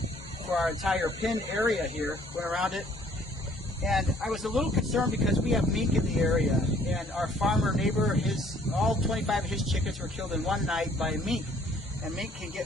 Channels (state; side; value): normal; both; correlation 0.60